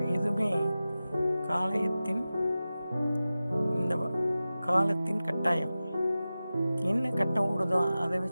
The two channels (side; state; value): both; inverted; correlation -0.95